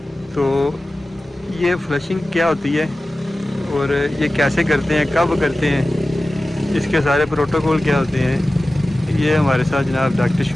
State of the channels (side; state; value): both; normal; correlation 0.96